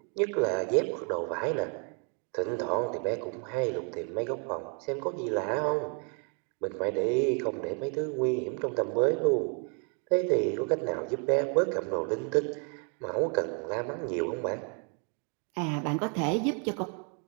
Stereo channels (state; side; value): quieter; left; 39.0 dB